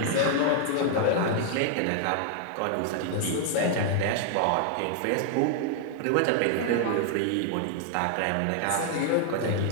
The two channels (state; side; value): different; both; correlation 0.00